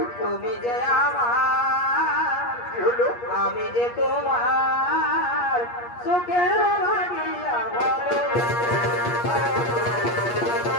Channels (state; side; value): late; right; 8.4 ms